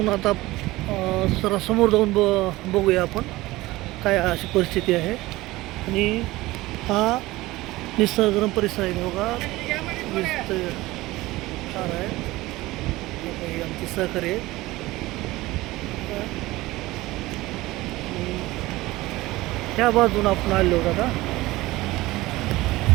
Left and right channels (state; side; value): quieter; left; 18.9 dB